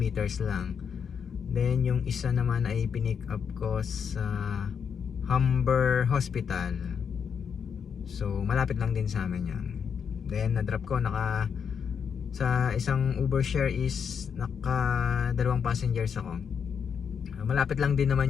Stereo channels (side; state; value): right; quieter; 7.0 dB